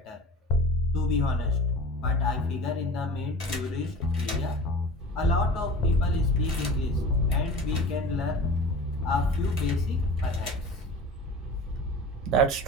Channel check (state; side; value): normal; both; correlation 0.35